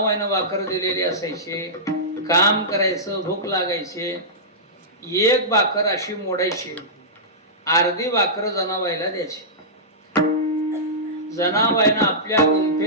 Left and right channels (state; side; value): normal; both; correlation -0.16